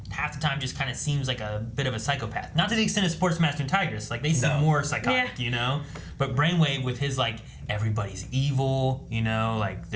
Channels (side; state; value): both; identical; correlation 1.00